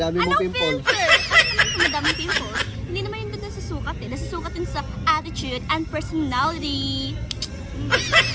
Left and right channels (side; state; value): both; identical; correlation 1.00